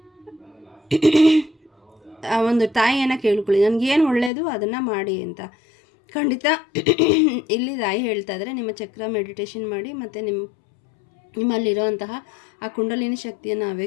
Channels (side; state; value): right; drops out; at 4.3 s